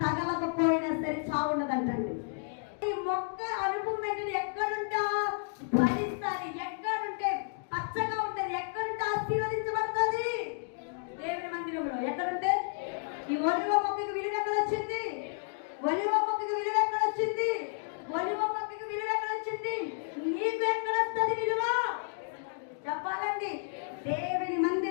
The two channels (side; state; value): right; silent; digital silence